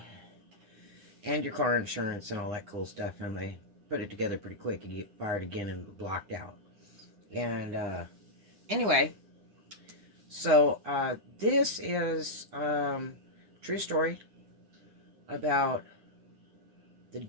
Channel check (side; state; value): left; late; 9.9 ms